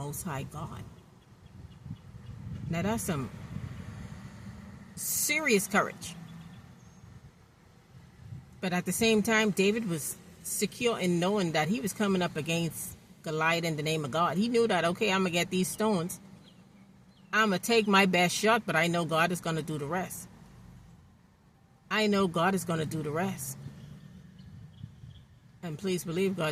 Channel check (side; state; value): both; identical; correlation 1.00